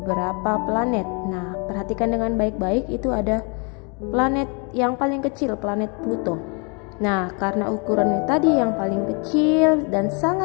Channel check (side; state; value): right; quieter; 34.4 dB